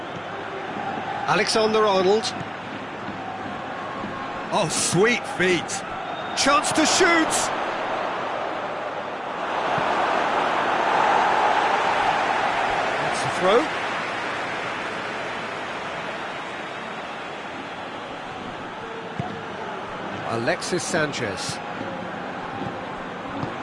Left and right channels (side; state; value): both; identical; correlation 1.00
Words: Alexander-Arnold. Oh, sweet feet. Chance to shoot. Throw. Alexis Sanchez.